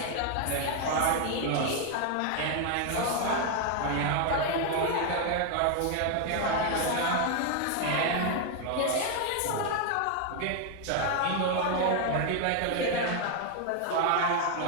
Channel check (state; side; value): different; both; correlation 0.01